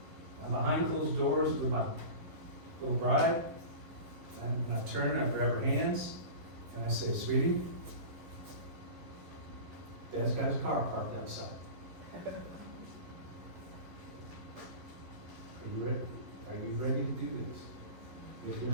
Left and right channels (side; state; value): left; late; 11 ms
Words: And behind closed doors with my little bride. And I turn her, I grab her hands, and I say, sweetie, Dad's got his car parked outside. Are you ready? Are you ready to do this? If you're